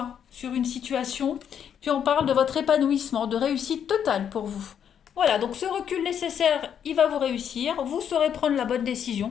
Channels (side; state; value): right; quieter; 8.5 dB